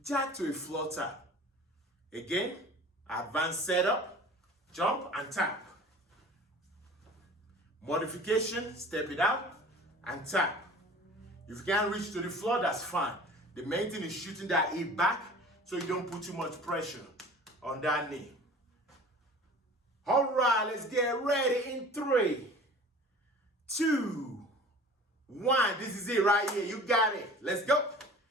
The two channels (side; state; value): both; normal; correlation 0.43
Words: jack to a floor tap. Again, advanced setup, jump and tap. Modification, step it out and tap. If you can't reach to the floor, that's fine. The main thing is shooting that hip back so you don't put too much pressure on that knee. All right, let's get ready in 3, 2, 1. This is it right here. You got it. Let's go.